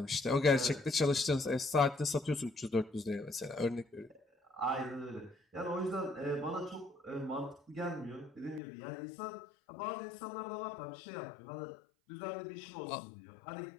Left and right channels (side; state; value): right; drops out; at 8.6 s